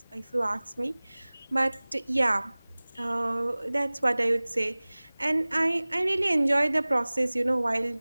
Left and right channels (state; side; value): inverted; both; correlation -1.00